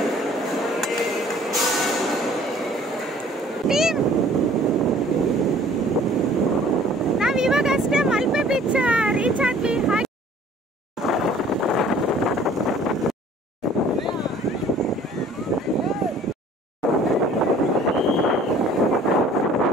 ನಾವ್ ಇವಾಗ ಅಷ್ಟೇ ಮಲ್ಪೆ ಬೀಚ್ ರೀಚ್ ಆದ್ವಿ.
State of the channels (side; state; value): both; normal; correlation 0.53